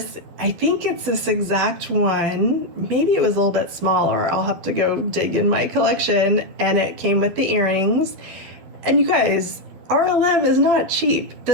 I think it's this exact one. Maybe it was a little bit smaller. I'll have to go dig in my collection. And it came with the earrings. And you guys, RLM is not cheap.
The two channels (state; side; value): late; left; 12 ms